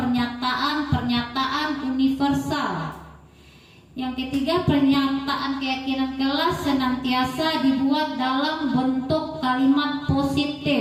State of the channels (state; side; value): identical; both; correlation 1.00